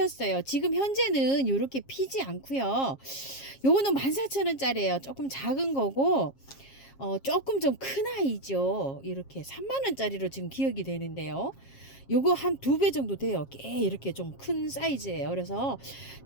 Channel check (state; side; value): late; right; 7.4 ms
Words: 지금 현재는 이렇게 피지 않고요. 요거는 14,000원짜리예요. 조금 작은 거고, 조금 좀 큰 아이죠. 이렇게 30,000원짜리로 지금 기억이 되는데요. 요거 한 2배 정도 돼요. 꽤 이렇게 좀 큰 사이즈예요. 그래서